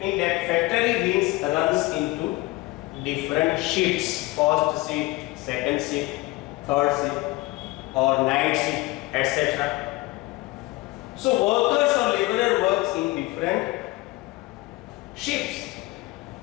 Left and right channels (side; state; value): right; quieter; 20.7 dB